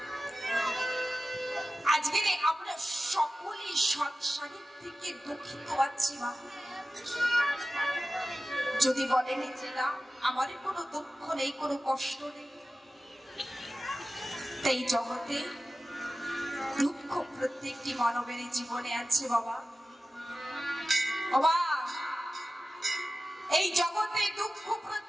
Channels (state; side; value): normal; both; correlation 0.95